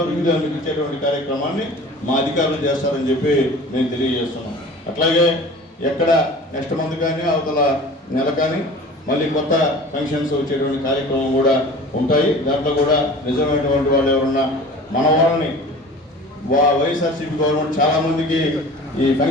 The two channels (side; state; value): both; normal; correlation 0.41